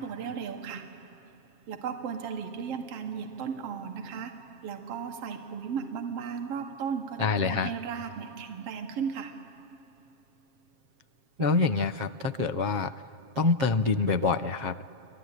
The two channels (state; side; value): late; left; 7.5 ms